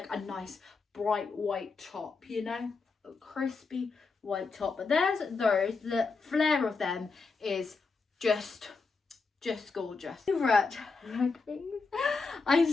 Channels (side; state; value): right; quieter; 4.4 dB